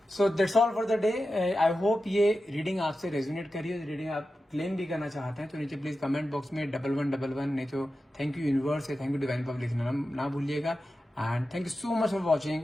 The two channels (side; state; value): both; normal; correlation 0.92